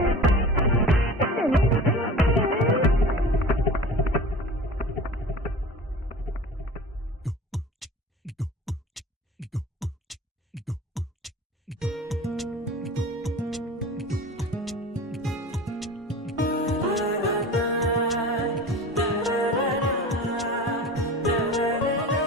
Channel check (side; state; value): both; normal; correlation 0.37